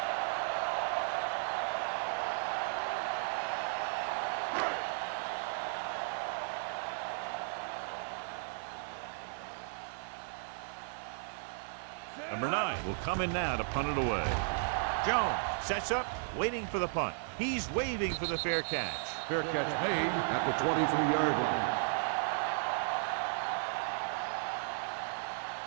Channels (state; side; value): silent; left; 54 dB below the other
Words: Number 9 will come in now to punt it away. Jones sets up, waiting for the punt. He's waving for the fair catch. Fair catch made at the 23-yard line.